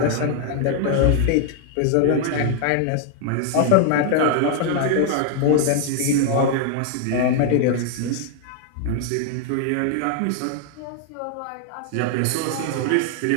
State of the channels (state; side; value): different; both; correlation 0.00